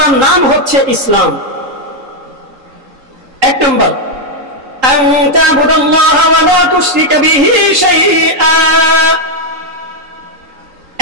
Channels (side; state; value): left; late; 3.8 ms